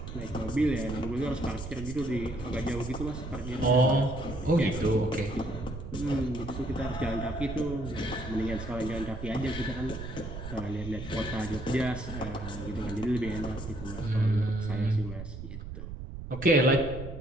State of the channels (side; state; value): right; noise; rumble, 9 dB below the sound